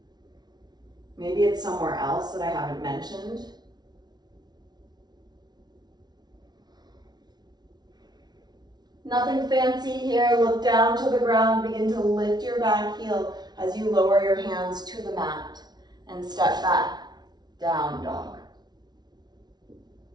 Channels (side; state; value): left; late; 0.19 ms